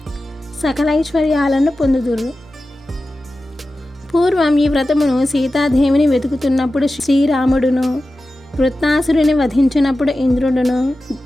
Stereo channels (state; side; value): normal; both; correlation 0.94